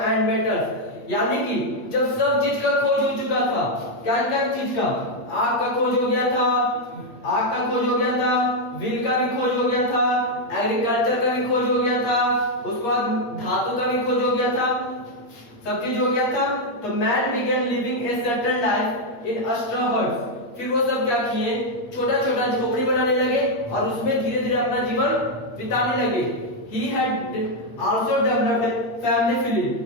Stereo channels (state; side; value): late; right; 8.5 ms